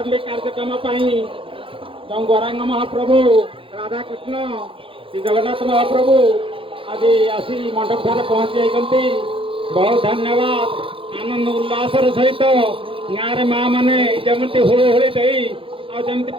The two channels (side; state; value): left; late; 0.26 ms